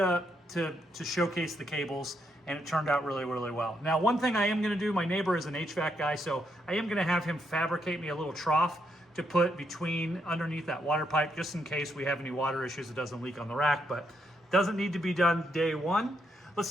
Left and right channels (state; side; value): normal; both; correlation 0.78